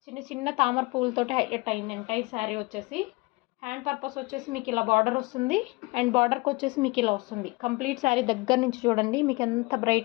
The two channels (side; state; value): right; quieter; 24.3 dB